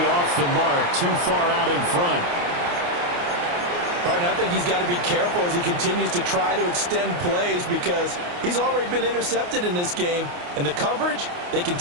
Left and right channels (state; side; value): late; left; 28 ms